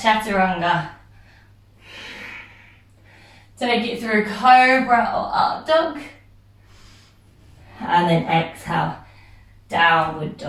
chaturanga. Take it through cobra or up dog. And then exhale, downward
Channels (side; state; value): both; identical; correlation 1.00